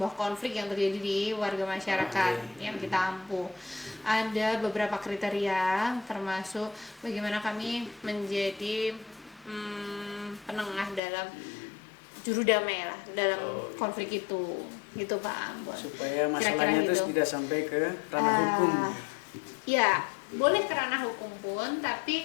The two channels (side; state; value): right; drops out; at 11.0 s